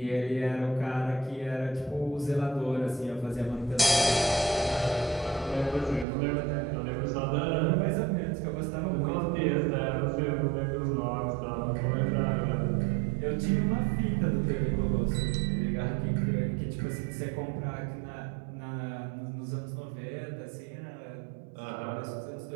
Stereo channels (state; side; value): drops out; left; at 6.1 s